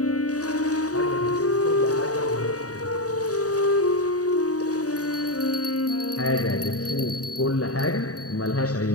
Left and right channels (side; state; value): right; late; 0.67 ms